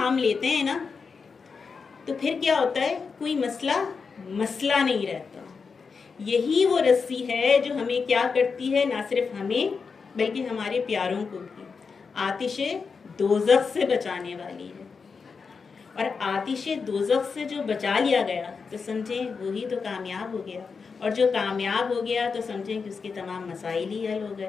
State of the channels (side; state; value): right; quieter; 5.2 dB